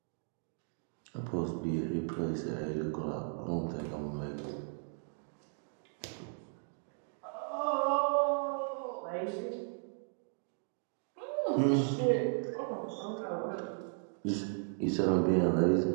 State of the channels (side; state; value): left; silent; digital silence